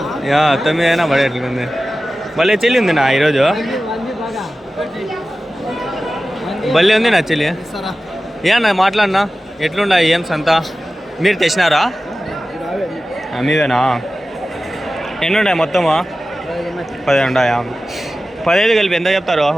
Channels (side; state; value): both; normal; correlation 0.95